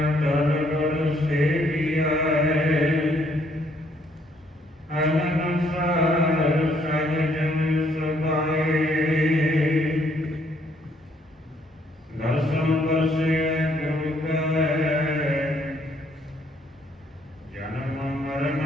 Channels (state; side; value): normal; both; correlation 0.68